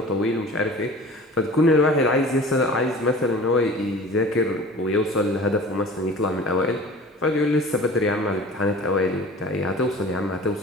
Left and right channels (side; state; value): both; normal; correlation 0.42